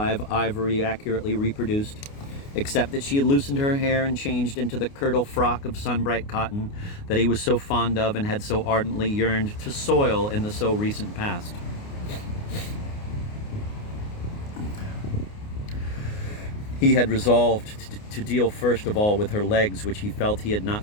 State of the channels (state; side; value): late; right; 29 ms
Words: ivory accurately reproduced, except that she had loosened her hair and changed into the kirtle frock of sun-bright cotton that he was so fond of and had so ardently yearned to soil in the so recent past. He had resolved to deal first of all with her legs, which he felt he had